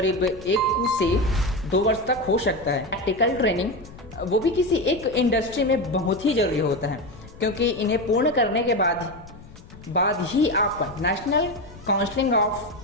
1 से 2 वर्ष तक हो सकता है। प्रैक्टिकल ट्रेनिंग वो भी किसी एक इंडस्ट्री में बहुत ही जरूरी होता है, क्योंकि इन्हें पूर्ण करने के बाद ही आप national council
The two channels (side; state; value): left; noise; rumble, 19 dB below the sound